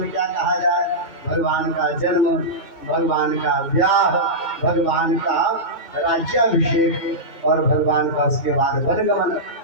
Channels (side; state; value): right; late; 2.2 ms